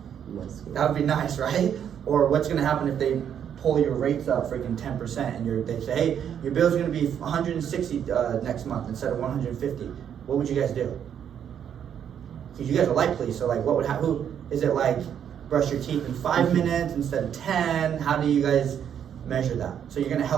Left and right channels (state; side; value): quieter; left; 8.8 dB